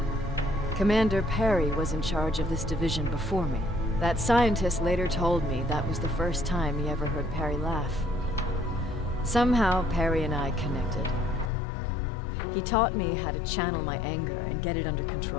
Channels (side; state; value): right; drops out; at 11.5 s